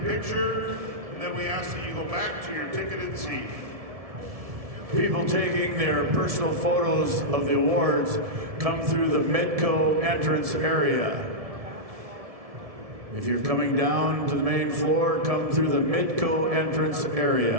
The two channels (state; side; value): late; left; 1.7 ms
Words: and then we ask that you go back to your ticketed seat. People taking their personal photos of the awards come through the Midco entrance area. If you're coming down to the main floor, come through the Midco entrance